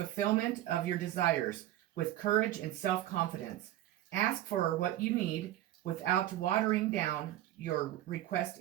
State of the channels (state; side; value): quieter; left; 13.8 dB